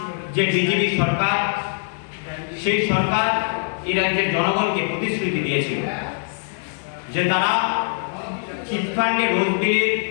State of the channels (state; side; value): silent; right; 64 dB below the other